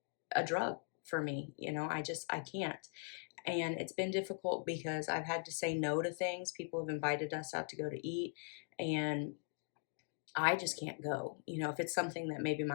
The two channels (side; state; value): right; silent; 51 dB below the other